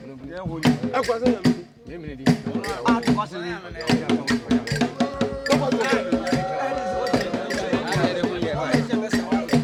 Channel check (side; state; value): both; identical; correlation 1.00